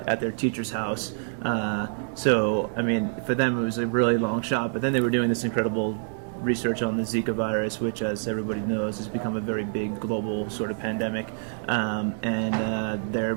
their teacher's house. So, I mean, for them it was a really long shot. But then they were doing this incredible research on the Zika virus, which, as everybody knows, has become a very big global sort of pandemic. And their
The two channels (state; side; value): silent; left; digital silence